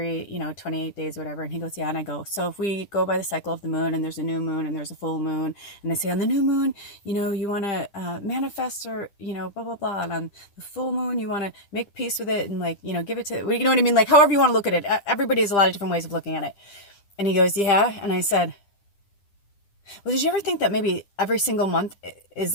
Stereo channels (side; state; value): right; late; 10 ms